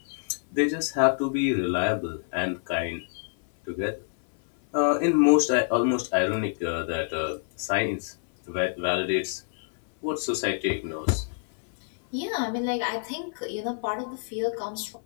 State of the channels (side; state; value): right; silent; 60 dB below the other